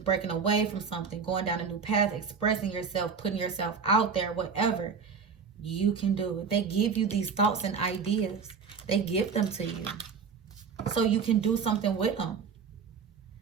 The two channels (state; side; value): quieter; left; 5.9 dB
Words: away from something, going down a new path, expressing yourself, putting yourself out there, whatever. You can do it. They give you these thoughts and ideas. They give them to you. So you can do something with them.